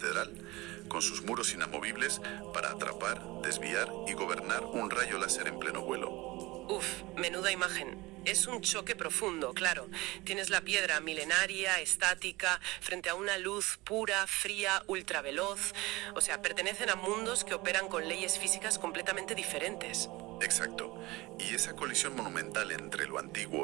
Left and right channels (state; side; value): quieter; left; 21.3 dB